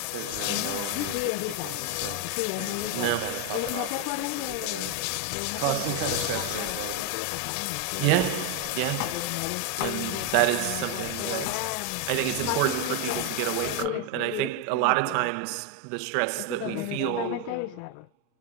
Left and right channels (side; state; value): both; different; correlation 0.01